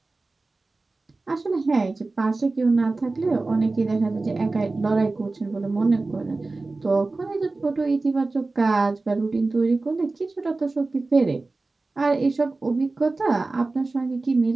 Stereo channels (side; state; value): left; quieter; 3.4 dB